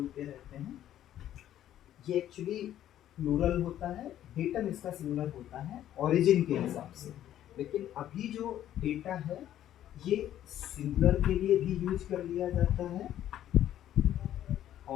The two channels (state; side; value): quieter; right; 11.8 dB